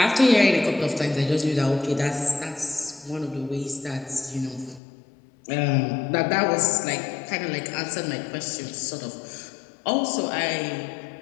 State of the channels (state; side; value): drops out; right; at 4.8 s